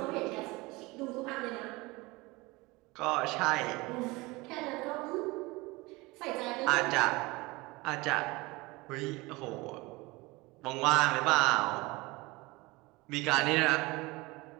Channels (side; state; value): left; quieter; 23.1 dB